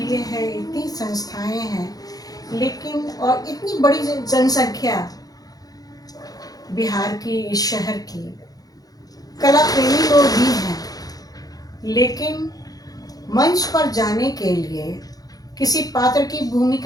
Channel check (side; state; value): right; late; 0.18 ms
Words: है, इतनी संस्थाएं हैं, लेकिन और इतनी बड़ी जनसंख्या बिहार की, इस शहर की, कला प्रेमी लोग भी हैं, लेकिन मंच पर जाने के लिए, किसी पात्र की